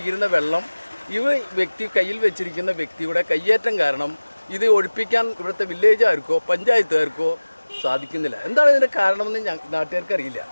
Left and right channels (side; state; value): both; inverted; correlation -1.00